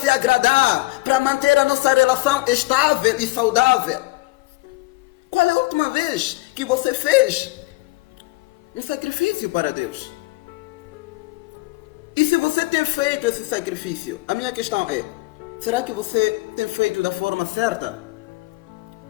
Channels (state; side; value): quieter; right; 21.8 dB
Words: agradar para manter a nossa relação estável e saudável. Qual é a última vez que você fez um sacrifício para Deus? E se você tem feito esse sacrifício, a minha questão é, será que você tem feito da forma certa?